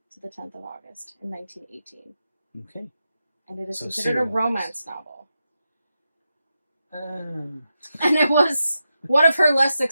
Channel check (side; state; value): both; inverted; correlation -0.88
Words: to the 10th of August in 1918. Okay. And it is So considered a serialized. romance novel. Um, And it was one of her less